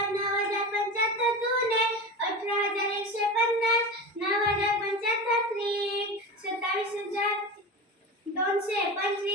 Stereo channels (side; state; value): both; normal; correlation 0.27